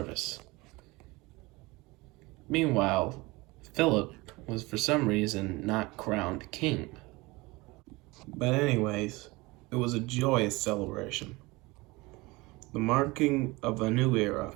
Meanwhile, Philip was for some reason not crowned king. But anyways, it was a joyous celebration, the marking of a new era,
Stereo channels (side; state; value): left; quieter; 23.0 dB